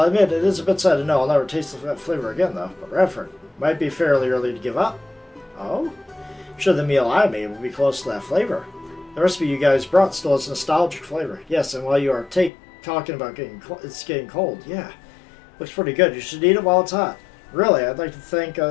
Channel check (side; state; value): right; drops out; at 12.5 s